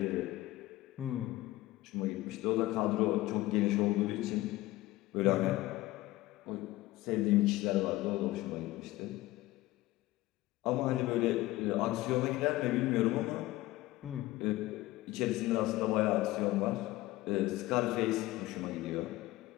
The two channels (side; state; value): right; quieter; 17.8 dB